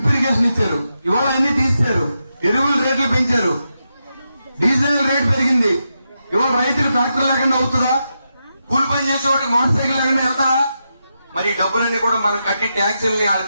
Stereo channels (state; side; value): inverted; both; correlation -0.86